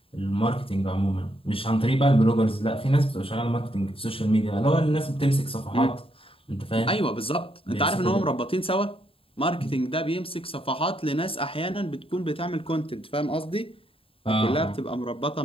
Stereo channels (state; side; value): late; right; 0.27 ms